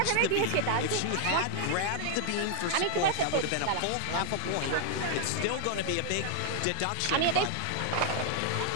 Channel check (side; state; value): both; different; correlation 0.00